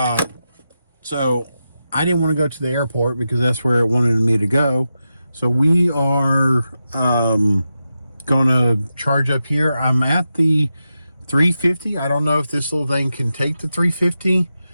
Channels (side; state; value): both; inverted; correlation -0.90